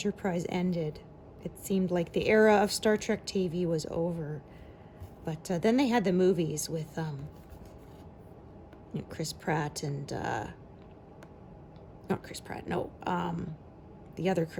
ended, it seemed like the era of Star Trek TV was over. But then they had the movies with Chris Pratt and not Chris Pratt, no, the other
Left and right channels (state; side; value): identical; both; correlation 1.00